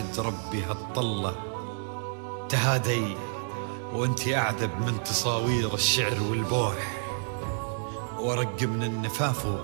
ربي هالطلة، تهادي وانتي أعذب من تصاوير الشعر والبوح، ورق من النفاف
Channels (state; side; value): silent; left; digital silence